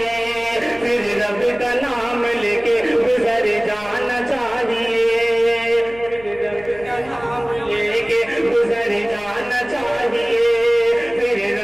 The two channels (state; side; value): noise; left; hum, 21 dB below the sound